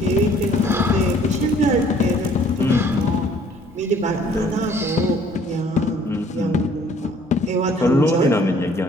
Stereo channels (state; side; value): normal; both; correlation 0.58